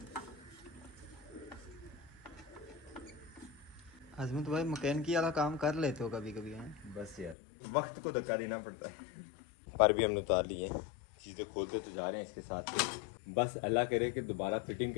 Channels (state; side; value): drops out; right; at 7.4 s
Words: आजमत भाई मैकेनिकी वाला काम कर लेते हो कभी कभी हैं? बस यार वक्त को धक्का देना पड़ता है। पर भी हमने उतार ली है, चीज़ें खोलते तो जा रहे हैं इसके साथ। बस अल्लाह करे कि दोबारा फिटिंग